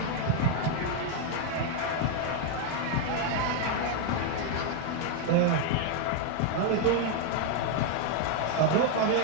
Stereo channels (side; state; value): both; different; correlation 0.00